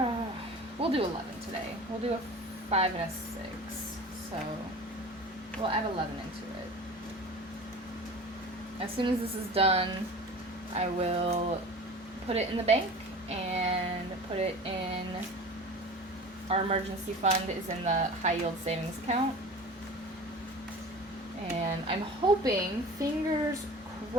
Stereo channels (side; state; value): both; normal; correlation 0.38